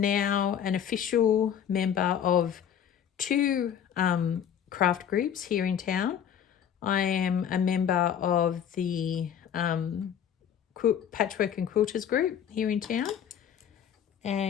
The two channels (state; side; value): quieter; right; 8.9 dB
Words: an official member of 2 craft groups here in town. I am a member of the Patchwork and Quilters group here in town,